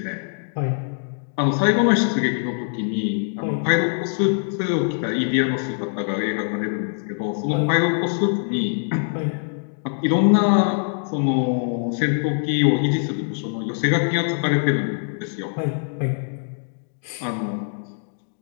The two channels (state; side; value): silent; right; digital silence